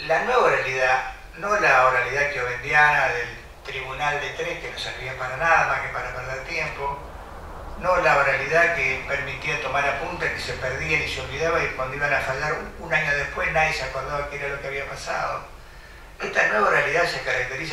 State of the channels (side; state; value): both; identical; correlation 1.00